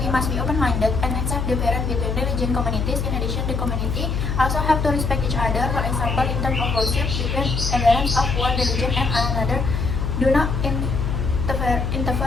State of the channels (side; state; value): left; noise; hum, 1 dB below the sound